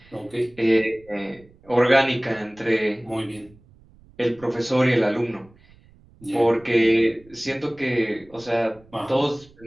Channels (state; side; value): noise; right; rumble, 27 dB below the sound